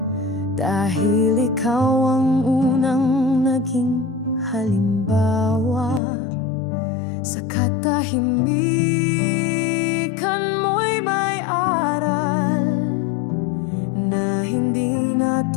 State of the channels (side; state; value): right; drops out; at 6.0 s